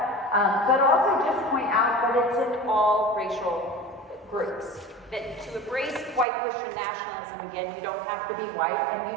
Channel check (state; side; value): drops out; left; at 6.2 s